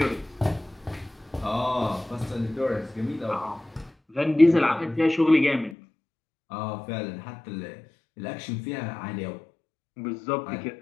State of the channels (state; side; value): drops out; right; at 5.8 s